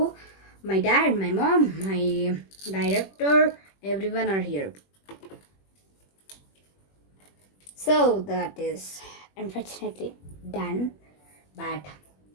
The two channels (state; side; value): late; right; 21 ms